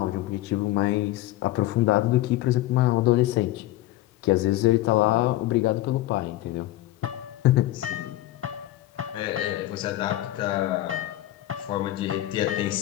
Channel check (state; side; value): quieter; right; 15.6 dB